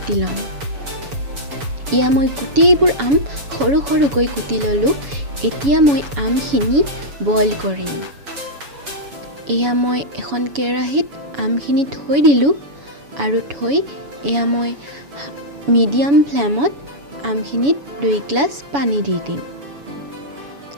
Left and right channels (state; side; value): late; left; 7.1 ms